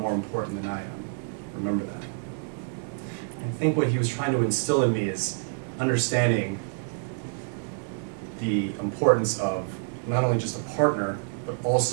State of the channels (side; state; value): left; silent; digital silence